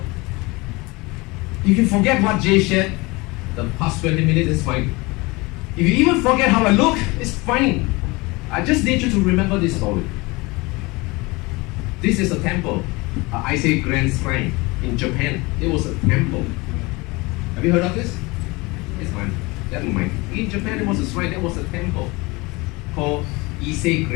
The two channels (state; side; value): quieter; right; 24.2 dB